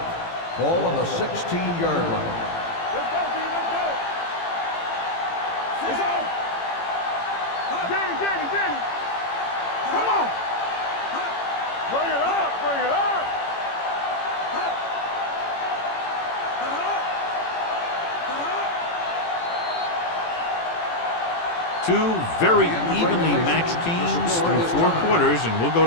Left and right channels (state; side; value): late; right; 18 ms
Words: Ball on the 16-yard line. Let's go, D, let's go. It's on. Danny. Come on. Bring it up, bring it up. Two very evenly matched teams through 4 quarters, and we'll go